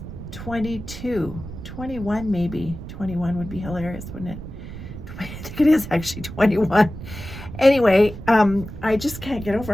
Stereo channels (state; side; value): noise; right; rumble, 11 dB below the sound